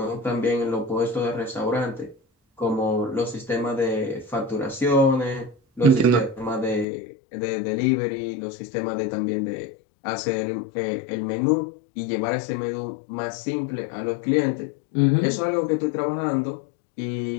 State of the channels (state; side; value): drops out; right; at 6.9 s